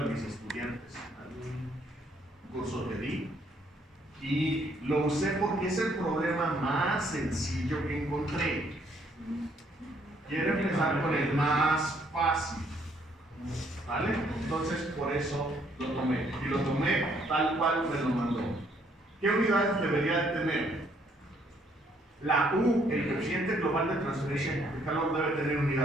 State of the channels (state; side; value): normal; both; correlation 0.67